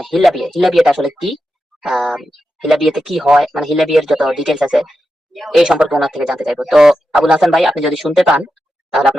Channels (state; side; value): normal; both; correlation 0.89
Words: হিল্লা বিয়েটা আসলে কি, আম, হিল্লা বিয়েতে কি হয়, মানে হিল্লা বিয়ের যত ডিটেলস আছে এই সম্পর্কে ওনার থেকে জানতে চাইবো। তো আবুল হাসান ভাই, আপনি যদি শুনতে পান তাহলে